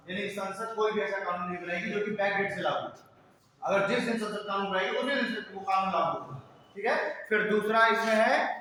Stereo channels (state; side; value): identical; both; correlation 1.00